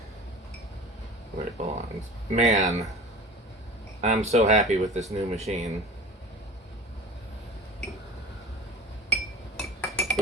where it belongs. Man, I'm so happy with this new machine.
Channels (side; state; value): both; normal; correlation 0.38